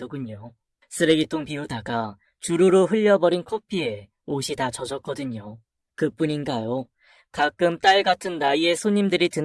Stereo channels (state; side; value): identical; both; correlation 1.00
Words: 쓰레기통 비우다가 주르르 흘려버린 커피에 옷이 다 젖었거든요. 그뿐인가요? 가끔 딸 같은 나이의 손님들이